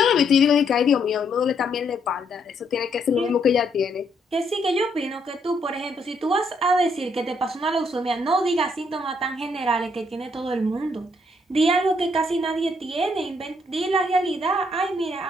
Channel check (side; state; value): both; normal; correlation 0.72